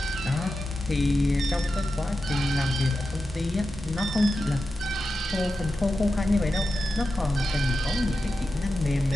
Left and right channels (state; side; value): normal; both; correlation 0.91